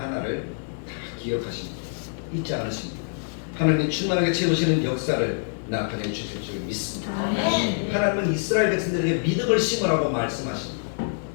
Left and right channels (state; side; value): silent; right; digital silence